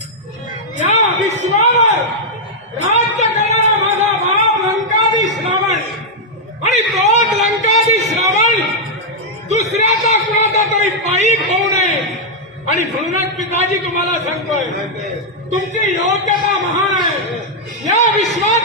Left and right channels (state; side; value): normal; both; correlation -0.04